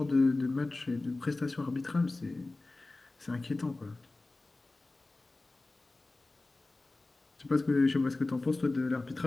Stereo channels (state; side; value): quieter; right; 3.1 dB